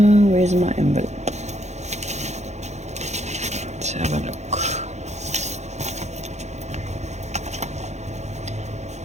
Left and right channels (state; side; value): late; left; 0.33 ms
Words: my envelope? Let's have a look.